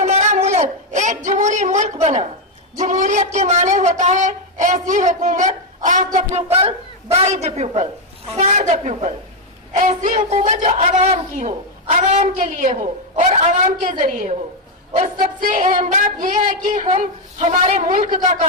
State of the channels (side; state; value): both; normal; correlation 0.03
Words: मुल्क एक जमहूरी मुल्क बना। जमहूरियत के माने होता है ऐसी हुकूमत of the people, by the people, for the people. ऐसी हुकूमत जो आवाम की हो, आवाम के लिए हो और आवाम के जरिए हो। और सबसे अहम बात यह है कि हम हमारे मुल्क का